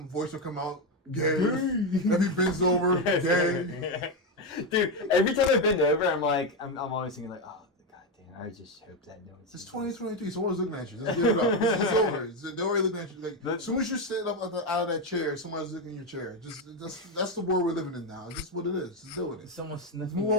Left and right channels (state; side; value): normal; both; correlation 0.09